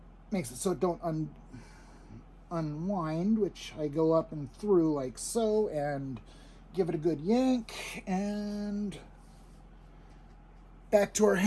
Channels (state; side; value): identical; both; correlation 1.00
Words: makes it so it don't unwind, which I go up and through like so, and give it a good yank, and back to our